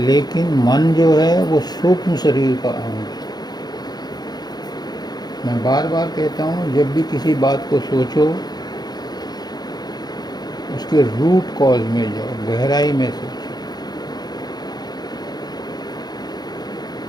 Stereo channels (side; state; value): right; late; 0.20 ms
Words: मन जो है वो सूक्ष्म शरीर का अंग है। मैं बार बार कहता हूँ, जब भी किसी बात को सोचो उसके रूट कॉज में जाओ, गहराई में सोचो।